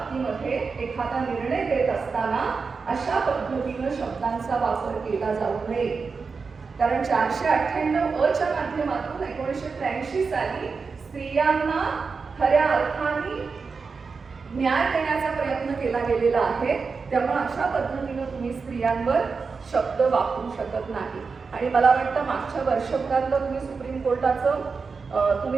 एखादा निर्णय देत असताना अशा पद्धतीनं शब्दांचा वापर केला जाऊ नये. कारण 498 च्या माध्यमातून 1983 साली स्त्रियांना खऱ्या अर्थाने न्याय देण्याचा प्रयत्न केला गेलेला आहे. त्यामुळे अशा पद्धतीनं तुम्ही स्त्रियांवर शब्द वापरू शकत नाही. आणि मला वाटतं मागच्या वर्षभरातलं तुम्ही सुप्रीम कोर्टाचं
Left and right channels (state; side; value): quieter; left; 4.9 dB